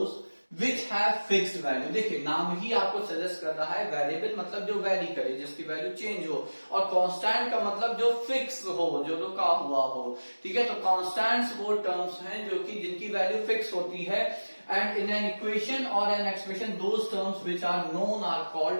which have fixed value. देखिए नाम ही आपको सजेस्ट कर रहा है, वेरिएबल मतलब जो वैरी करे, जिसकी वैल्यू चेंज हो, और कांस्टेंट का मतलब जो फिक्स हो, जो रुका हुआ हो. ठीक है, तो कांस्टेंट्स वो टर्म्स हैं जो कि जिनकी वैल्यू फिक्स होती है. एंड इन एन इक्वेशन और an expression those terms which are known are called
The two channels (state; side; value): inverted; both; correlation -1.00